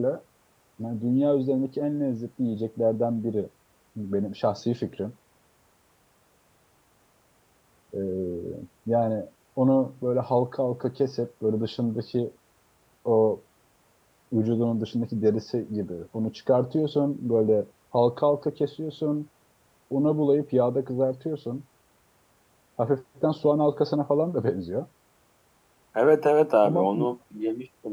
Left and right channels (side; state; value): both; identical; correlation 1.00